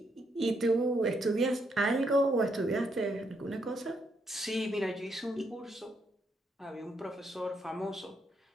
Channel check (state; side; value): normal; both; correlation 0.76